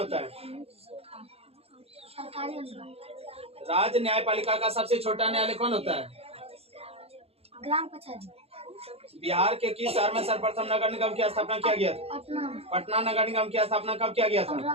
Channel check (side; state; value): left; late; 0.29 ms